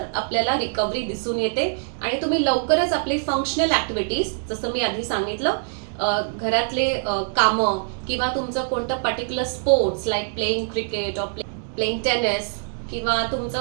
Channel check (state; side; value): silent; left; 63 dB below the other